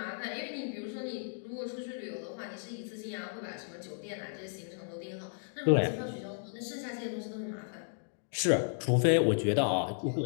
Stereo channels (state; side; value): silent; right; digital silence